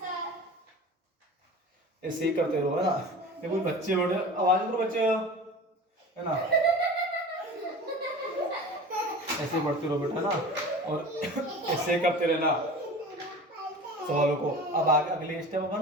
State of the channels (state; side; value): normal; both; correlation 0.36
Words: ऐसे ही करते रहो, है ना। ये कोई बच्चे बैठे, आवाज करो बच्चे, है ना। ऐसे बढ़ते रहो बेटा ना, और ऐसे करते रहना सवालों को। अब आगे अगले स्टेप